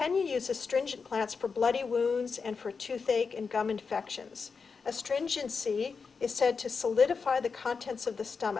uses astringent plants for bloody wounds and for toothache and gum infections. Astringency is said to solidify the contents of the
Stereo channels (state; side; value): quieter; right; 5.2 dB